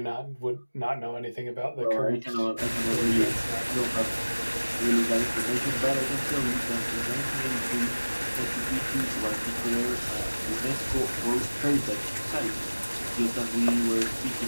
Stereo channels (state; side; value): inverted; both; correlation -1.00